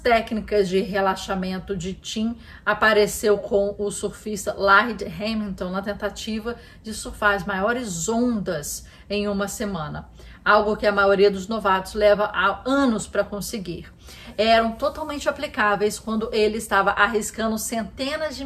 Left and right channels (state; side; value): identical; both; correlation 1.00